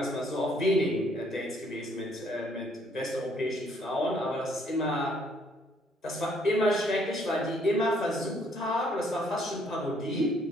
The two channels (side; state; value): both; normal; correlation 0.65